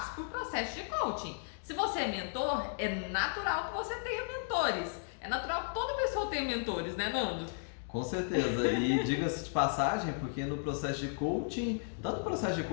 por processo de coaching. Se você é mentor, é natural que você tenha mentores. É natural que toda pessoa tenha mentores, né, Nando? Com certeza, e diga-se de passagem, porque no processo de coaching, tanto o processo de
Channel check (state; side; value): silent; right; digital silence